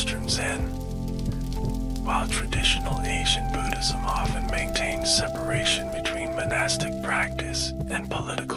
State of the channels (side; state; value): both; identical; correlation 1.00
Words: Zen. While traditional Asian Buddhism often maintains separation between monastic practice and